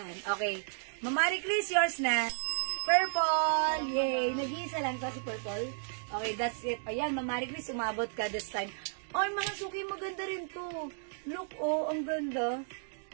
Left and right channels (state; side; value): silent; left; digital silence